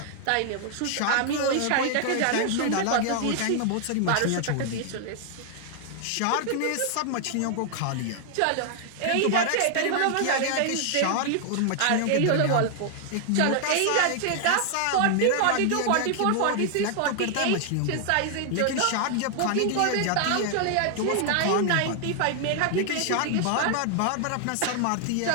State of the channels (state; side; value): different; both; correlation 0.00